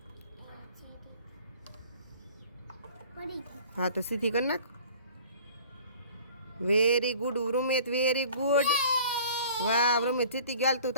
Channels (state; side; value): inverted; both; correlation -0.48